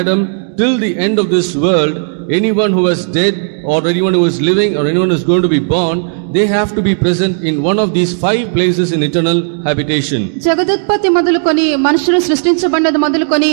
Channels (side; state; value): left; silent; digital silence